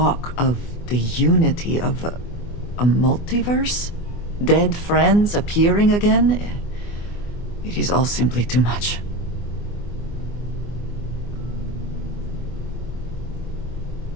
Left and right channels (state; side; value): late; right; 24 ms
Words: of the unity of a multiverse? Dead friends appearing again? It is all simply too much.